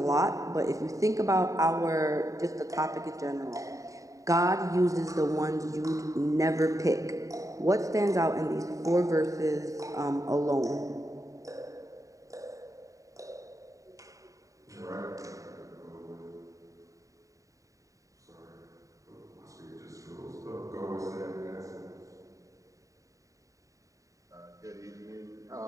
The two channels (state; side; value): late; left; 0.16 ms